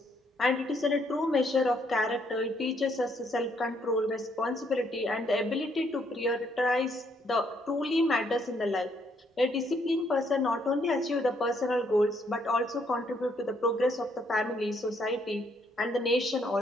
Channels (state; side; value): normal; both; correlation 0.71